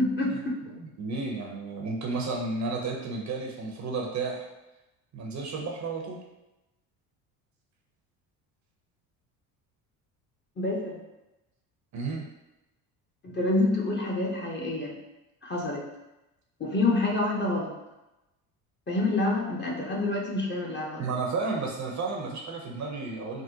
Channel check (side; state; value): both; normal; correlation 0.34